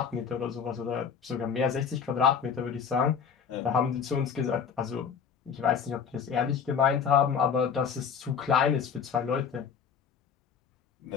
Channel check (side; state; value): right; quieter; 6.9 dB